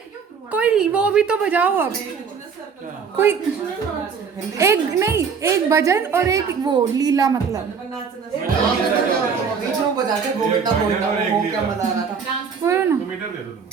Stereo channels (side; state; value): left; quieter; 6.0 dB